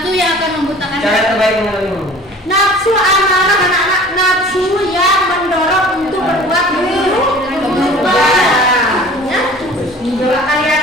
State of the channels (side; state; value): both; normal; correlation 0.46